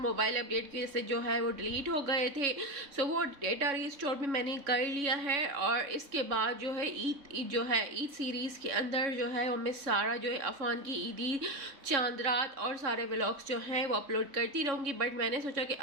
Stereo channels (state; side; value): late; left; 3.6 ms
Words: अपडेट की वजह से जो है वो डिलीट हो गए थे, सो वो डेटा रिस्टोर भी मैंने कर लिया है। और इसके बाद जो है ईद सीरीज़ के अंदर जो है वो मैं सारा जो है अफान की ईदी, चांद रात और सारे व्लॉग्स जो हैं वो अपलोड करती रहूँगी। बट मैंने सोचा कि